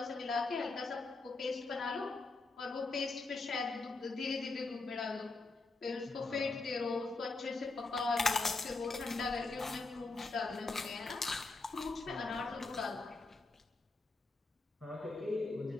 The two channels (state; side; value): quieter; right; 3.6 dB